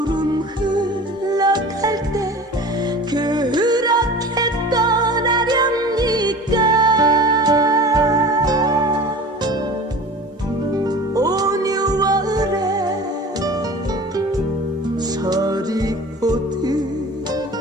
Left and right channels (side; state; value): both; normal; correlation 0.39